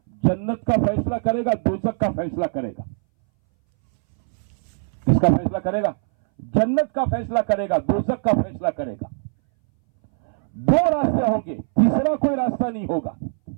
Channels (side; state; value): left; silent; 62 dB below the other